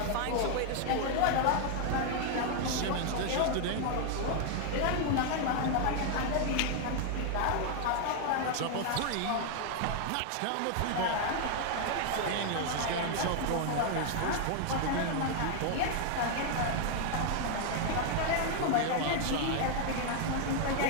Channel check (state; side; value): different; both; correlation 0.00